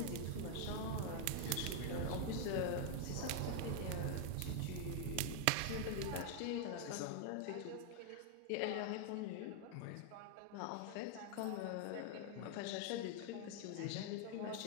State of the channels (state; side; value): different; both; correlation 0.00